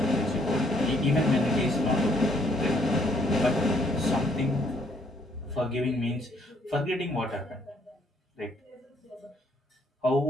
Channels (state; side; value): normal; both; correlation 0.67